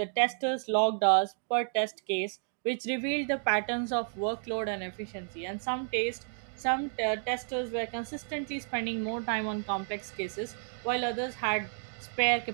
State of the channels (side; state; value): left; silent; 57 dB below the other